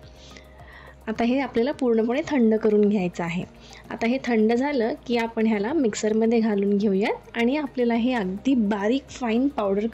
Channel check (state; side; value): identical; both; correlation 1.00